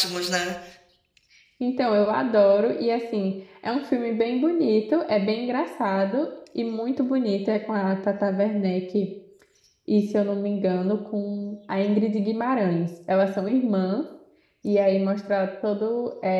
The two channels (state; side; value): identical; both; correlation 1.00